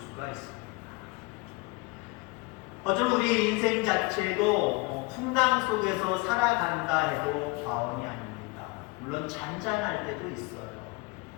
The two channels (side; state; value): right; quieter; 26.0 dB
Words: 있습니다. 어쩌면 우리의 인생 자체도 풍랑 속에서 살아간다 해도 과언이 아닙니다. 물론 잔잔할 때도 있어요.